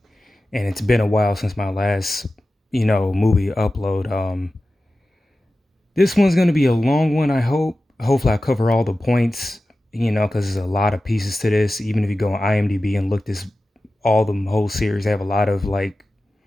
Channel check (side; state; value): both; normal; correlation 0.94